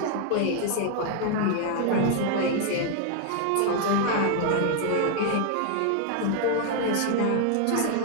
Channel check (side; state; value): both; different; correlation 0.00